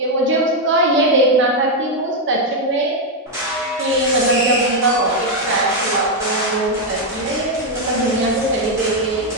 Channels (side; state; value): both; normal; correlation 0.02